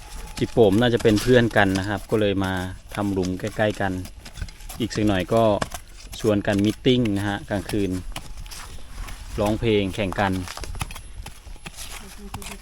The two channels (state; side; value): identical; both; correlation 1.00